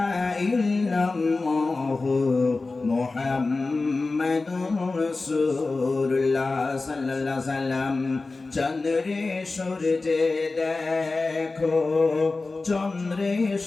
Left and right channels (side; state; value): right; quieter; 3.6 dB